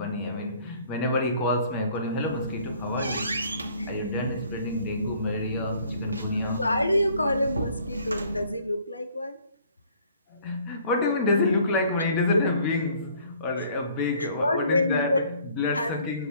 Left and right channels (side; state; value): both; inverted; correlation -0.58